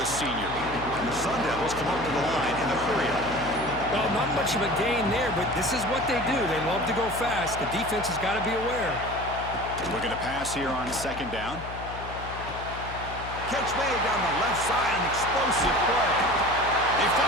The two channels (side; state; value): left; noise; hum, 11 dB below the sound